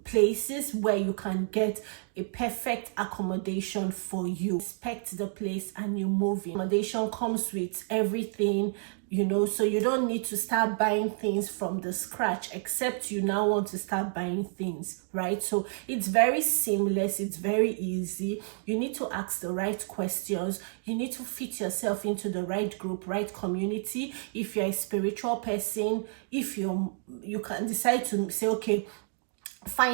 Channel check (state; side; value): silent; left; digital silence